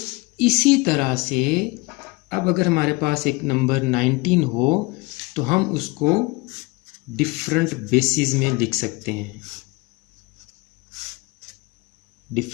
इसी तरह से अब अगर हमारे पास एक नंबर 19 हो तो हम उसको डिफरेंट बेसिस में लिख सकते हैं,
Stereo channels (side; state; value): right; quieter; 24.2 dB